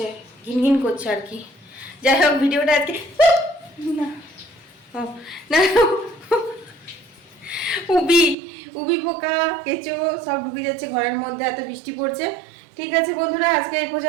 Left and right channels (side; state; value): left; drops out; at 8.3 s